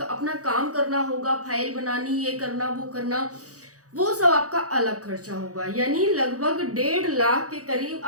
काम करना होगा, फाइल बनानी, ये करना वो करना, वो सब आपका अलग खर्चा होगा। यानी लगभग 1.5 लाख के करीब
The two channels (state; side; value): late; left; 0.66 ms